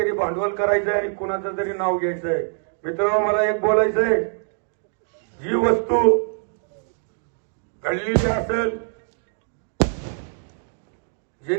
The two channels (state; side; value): silent; left; 60 dB below the other